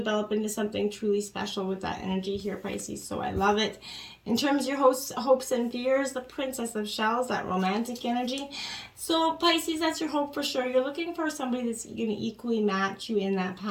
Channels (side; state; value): both; identical; correlation 1.00